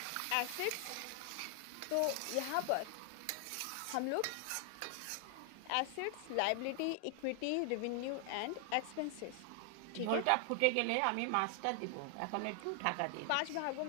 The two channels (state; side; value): different; both; correlation 0.00